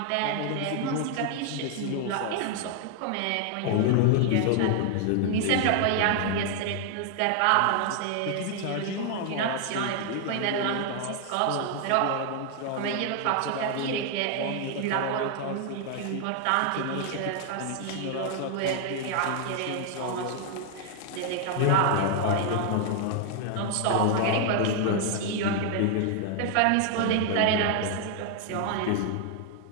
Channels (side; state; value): both; different; correlation 0.00